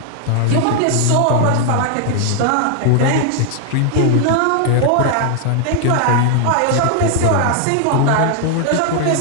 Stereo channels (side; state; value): both; different; correlation 0.00